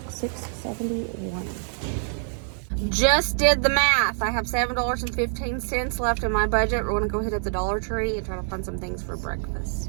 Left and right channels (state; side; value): silent; left; 61 dB below the other